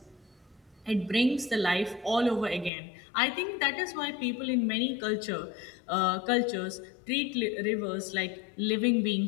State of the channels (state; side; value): drops out; right; at 2.7 s